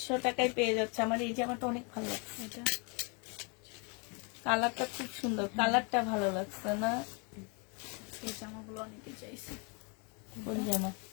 টাকায় পেয়ে যাচ্ছে। আমার এই জামাটা অনেক ভালো লাগছে, এটা কালারটা খুব সুন্দর, কালারটা ভালো লাগছে না? এই জামাগুলো অনেকে চাইছে। কোন জামা?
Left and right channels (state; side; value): quieter; right; 34.1 dB